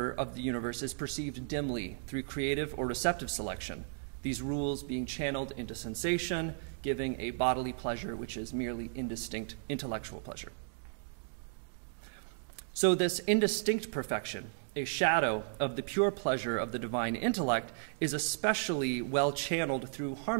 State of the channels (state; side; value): silent; left; digital silence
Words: of the universe is perceived dimly through creative or receptive selection, these rules being channeled into sensation, giving a bodily pleasure which is merely indistinct intellectual pleasure. So this indistinct perfection, a shadow of the pure pleasure of the divine intellect, is especially well channeled through